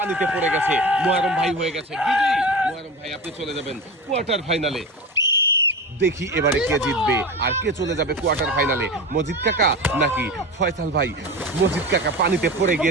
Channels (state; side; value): normal; both; correlation 0.28